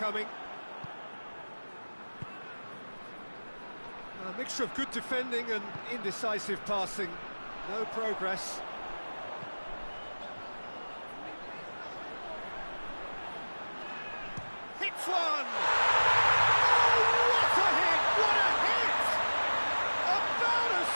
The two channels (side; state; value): both; inverted; correlation -1.00